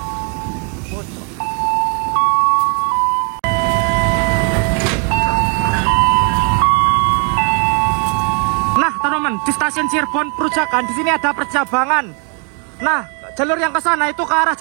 Di stasiun Cirebon Perujakan di sini ada percabangan. Nah, jalur yang ke sana itu ke arah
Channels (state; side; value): quieter; left; 36.9 dB